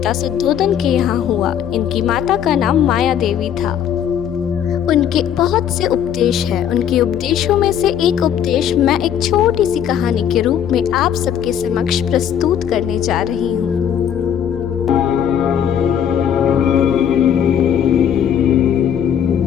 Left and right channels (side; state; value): right; quieter; 9.1 dB